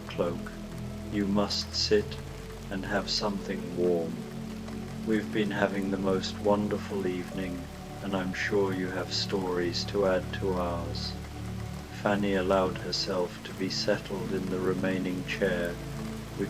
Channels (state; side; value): identical; both; correlation 1.00